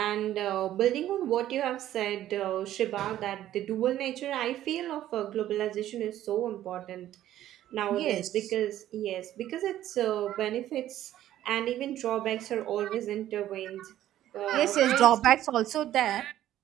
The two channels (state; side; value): quieter; left; 12.8 dB